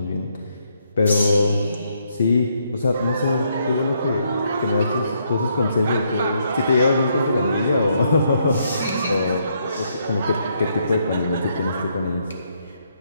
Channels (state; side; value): inverted; both; correlation -0.74